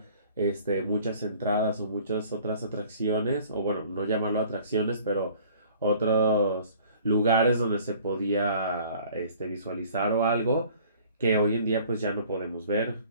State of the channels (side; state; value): both; inverted; correlation -0.51